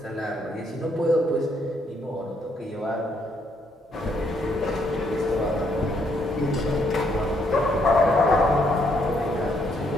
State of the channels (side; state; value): both; normal; correlation 0.72